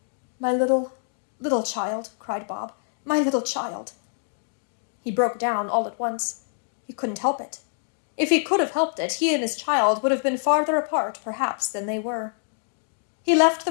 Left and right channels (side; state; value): right; silent; digital silence